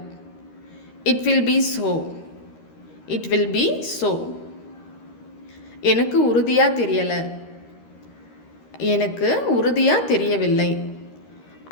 It will be so. It will be so. எனக்கு உறுதியாக தெரியலை. எனக்கு உறுதியாக தெரியவில்லை.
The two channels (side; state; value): right; late; 13 ms